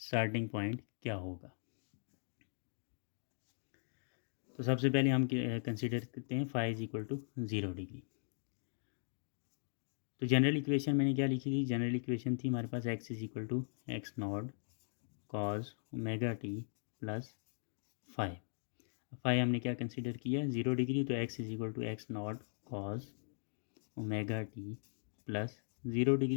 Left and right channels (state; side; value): silent; right; digital silence